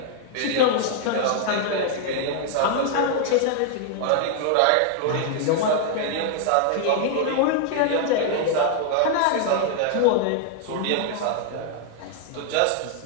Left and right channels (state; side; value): different; both; correlation 0.00